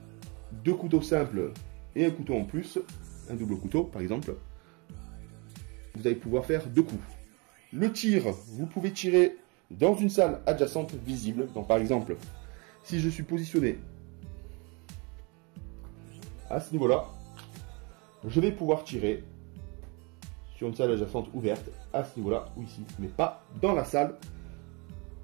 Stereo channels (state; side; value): quieter; left; 30.2 dB